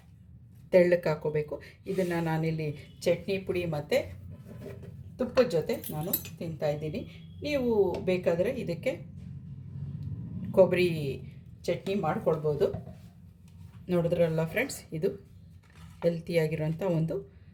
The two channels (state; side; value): identical; both; correlation 1.00